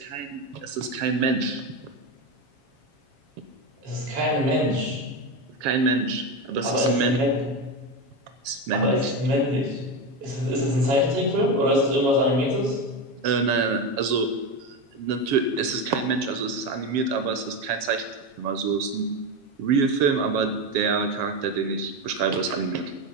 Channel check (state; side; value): late; left; 7.3 ms